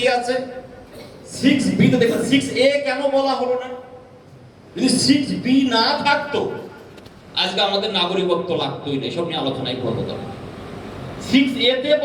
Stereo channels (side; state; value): both; identical; correlation 1.00